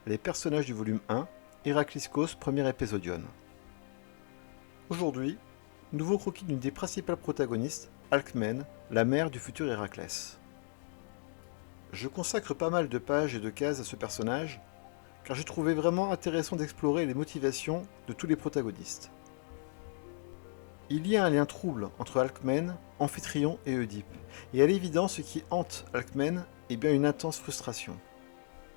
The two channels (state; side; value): silent; right; digital silence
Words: les personnages du volume 1, Héracliscos, premier épisodion. Aujourd'hui, nouveau croquis d'une des principales protagonistes, Alcmène, la mère du futur Héraclès. Je consacre pas mal de pages et de cases à ce personnage, car j'ai trouvé vraiment intéressant d'explorer les motivations de tous les protagonistes. Il y a un lien trouble entre Alcmène, Amphitryon et Oedipe, et à l'évidence ce qui hante Alcmène est bien une intense frustration.